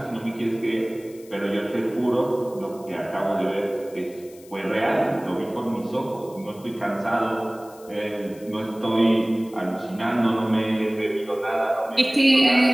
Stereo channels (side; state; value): left; noise; hiss, 24 dB below the sound